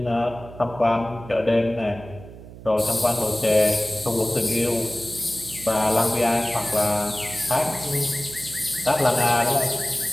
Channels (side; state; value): right; noise; hum, 16 dB below the sound